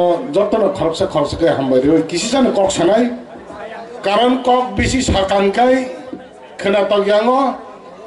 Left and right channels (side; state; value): both; identical; correlation 1.00